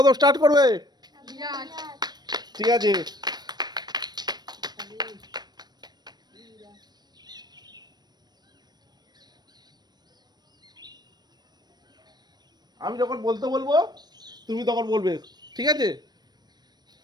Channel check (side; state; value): left; late; 0.20 ms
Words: স্টার্ট করবে? ঠিক আছে, আমি যখন বলতে বলবো তুমি তখন বলবে, ঠিক আছে?